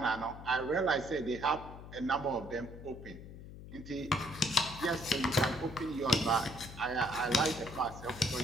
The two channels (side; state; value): left; noise; hum, 14 dB below the sound